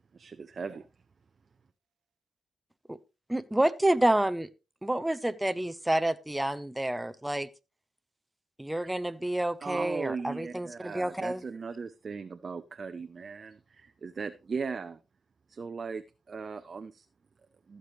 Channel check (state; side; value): normal; both; correlation 0.98